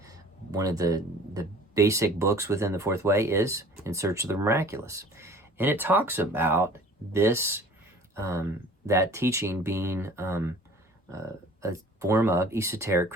one of the basic books within the Fourth Way is In Search of the Miraculous. And it talks about this, that teaching being a form of esoteric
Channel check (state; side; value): normal; both; correlation 0.48